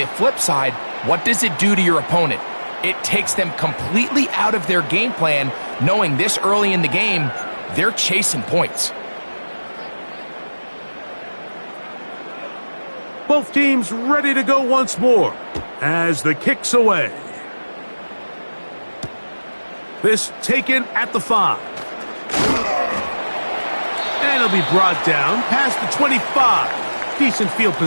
flip side, what does it do to your opponent? It takes them completely out of their game plan, knowing this early in the game, they're chasing points. Both teams ready to go once more as the kick's away. This taken at the 5. And it'll be brought down past the 25. Decent field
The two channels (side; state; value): both; inverted; correlation -1.00